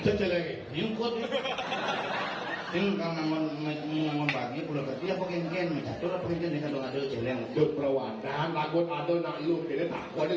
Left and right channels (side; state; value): both; identical; correlation 1.00